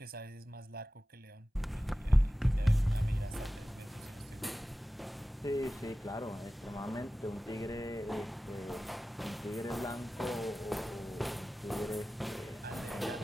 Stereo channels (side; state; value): both; normal; correlation 0.95